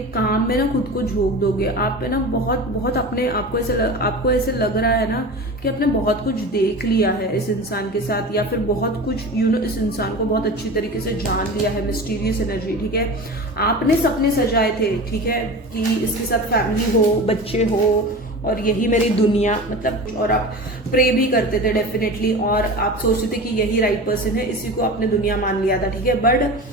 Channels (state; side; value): normal; both; correlation 0.32